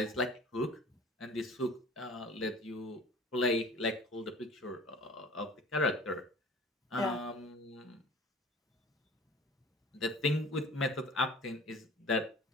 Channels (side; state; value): both; normal; correlation 0.44